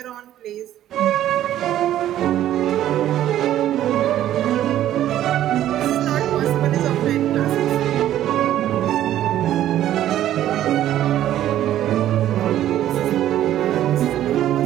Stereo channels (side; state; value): left; quieter; 12.3 dB